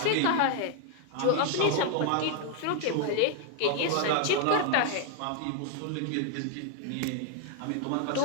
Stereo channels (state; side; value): different; both; correlation 0.00